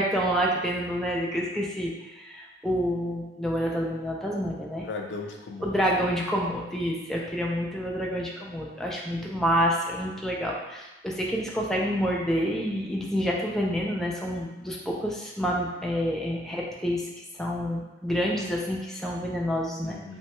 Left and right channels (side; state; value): both; normal; correlation 0.64